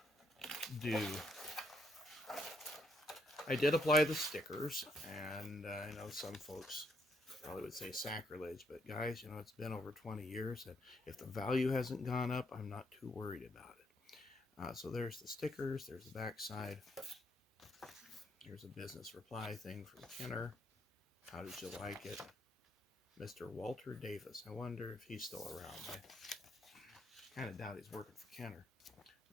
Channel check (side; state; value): both; normal; correlation 0.73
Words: do. I did apply the stickers, and I know some folks probably would say sacrilege, but guys, it's been over 20 years, and if the value hasn't gone up, I'm not too worried about it. So there's the stickers, there's the back side. Here's a business reply thing from Kenner. How did you like it? Mr. Walter Davis. I wonder if he's still around. I kind of doubt he's working for Kenner.